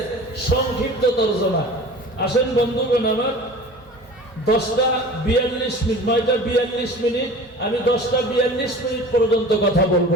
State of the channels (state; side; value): normal; both; correlation 0.41